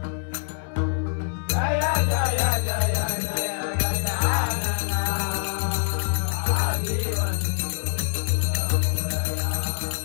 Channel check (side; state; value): right; silent; 61 dB below the other